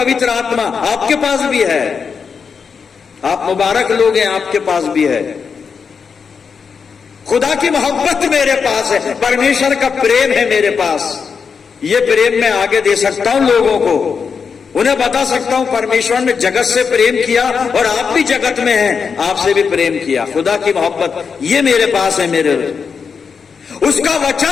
आत्मा आपके पास भी है, आप मुबारक लोग हैं, आपके पास भी है। खुदा की मोहब्बत मेरे पास है, परमेश्वर का प्रेम है मेरे पास। ये प्रेम मैं आगे दे सकता हूं लोगों को, उन्हें बता सकता हूं परमेश्वर ने जगत से प्रेम किया और आप भी जगत में हैं, आपसे भी प्रेम किया। खुदा की मोहब्बत ये मेरे पास है, मेरे उसका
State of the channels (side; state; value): right; quieter; 5.9 dB